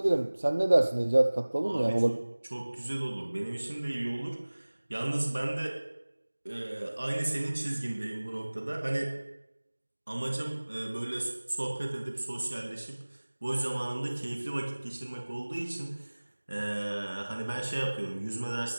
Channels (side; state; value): both; inverted; correlation -1.00